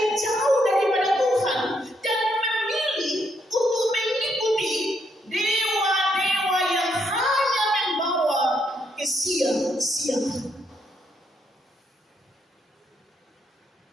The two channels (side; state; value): both; normal; correlation 0.75